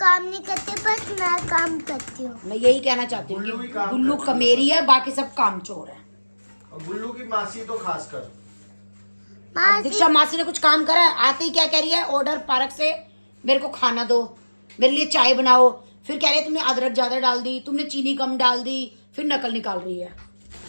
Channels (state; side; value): inverted; both; correlation -1.00